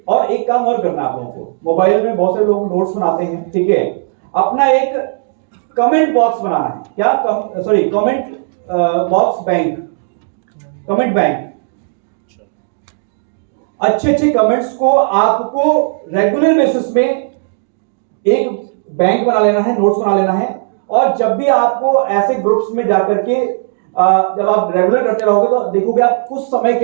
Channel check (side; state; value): left; silent; digital silence